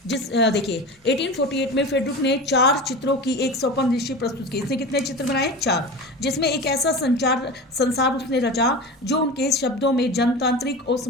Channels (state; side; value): normal; both; correlation 0.30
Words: देखिए, 1848 में फ्रेडरिक ने 4 चित्रों की एक स्वप्नदर्शी प्रस्तुत की। इसने कितने चित्र बनाए, 4, जिसमें एक ऐसा संसार उसने रचा जो उनके शब्दों में जनतांत्रिक और